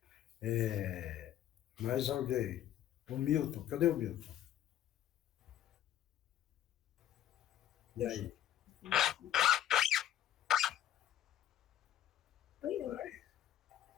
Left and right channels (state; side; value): quieter; right; 11.7 dB